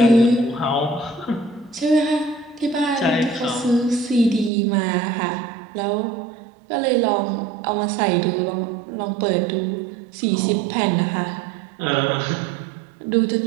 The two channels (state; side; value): drops out; left; at 4.5 s